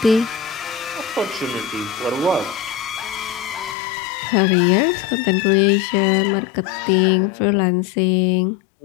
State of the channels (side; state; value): right; drops out; at 3.8 s